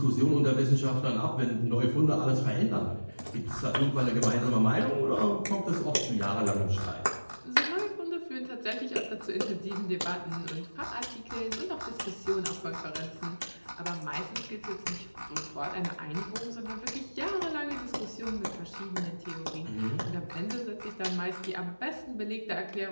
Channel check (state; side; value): inverted; both; correlation -1.00